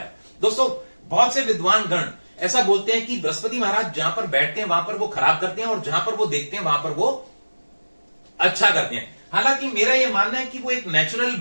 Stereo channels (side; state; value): both; inverted; correlation -1.00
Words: है। दोस्तों, बहुत से विद्वान गण ऐसा बोलते हैं कि बृहस्पति महाराज जहां पर बैठते हैं वहां पर वो खराब करते हैं और जहां पर वो देखते हैं वहां पर वो अच्छा करते हैं। हालांकि मेरा यह मानना है कि वो एक नेचुरल